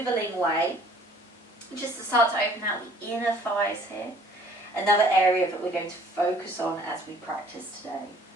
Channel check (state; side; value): normal; both; correlation 0.56